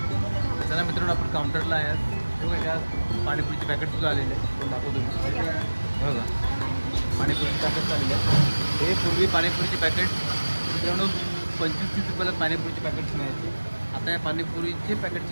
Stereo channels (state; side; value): inverted; both; correlation -1.00